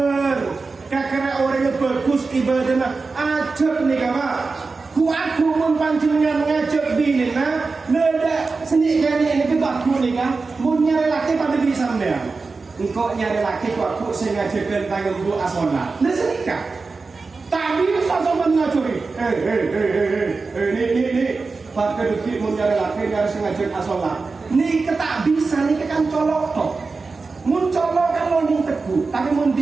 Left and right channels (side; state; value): left; quieter; 4.1 dB